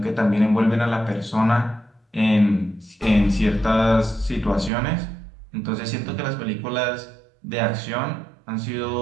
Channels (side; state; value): left; drops out; at 4.7 s